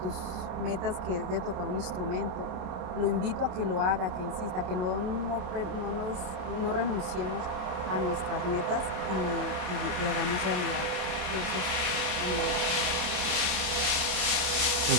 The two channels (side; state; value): left; late; 27 ms